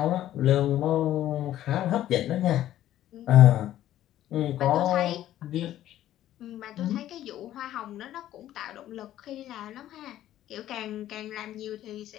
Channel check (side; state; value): right; quieter; 12.9 dB